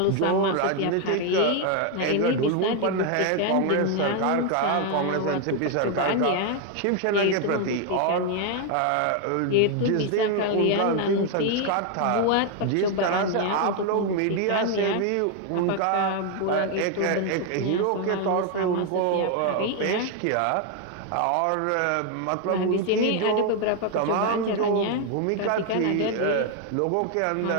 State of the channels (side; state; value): both; different; correlation 0.01